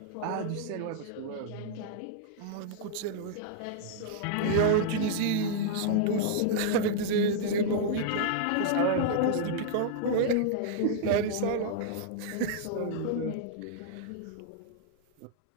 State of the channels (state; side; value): different; both; correlation -0.01